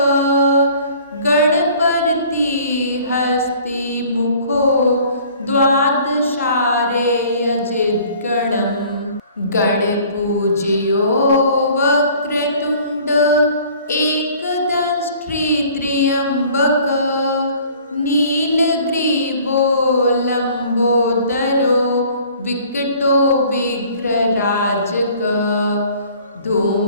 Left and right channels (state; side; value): inverted; both; correlation -0.52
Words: Ganapati हस्तिमुखो द्वादशारेयजिद्गणम् गणपूज्यो Vakratunda एकदंष्ट्री त्र्यम्बक नीलग्रीवो लम्बोदरो विकटो विघ्नराजक